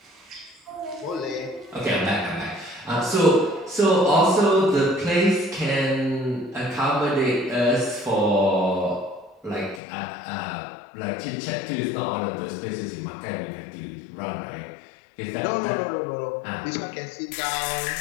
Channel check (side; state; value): right; drops out; at 9.8 s